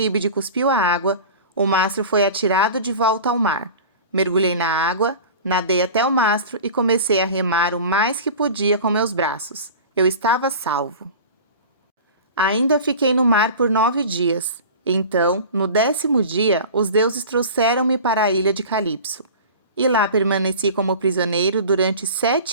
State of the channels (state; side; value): inverted; both; correlation -0.37